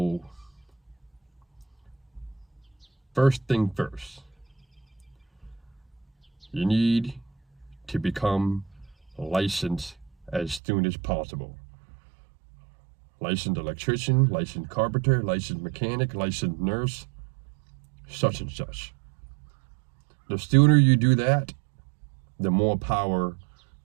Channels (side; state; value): left; drops out; at 10.6 s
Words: first thing first, you need to become licensed as soon as possible. Licensed electrician, licensed carpenter, licensed mechanic, licensed nurse, such and such. The sooner you do that, the more power